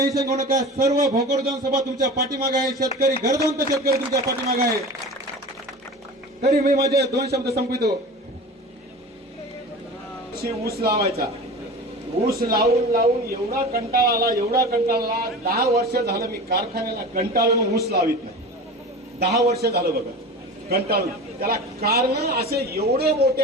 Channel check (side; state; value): both; normal; correlation 0.33